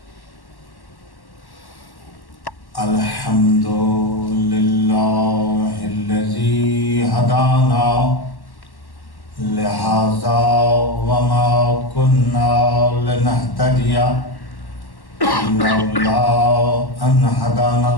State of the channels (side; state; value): right; late; 1.1 ms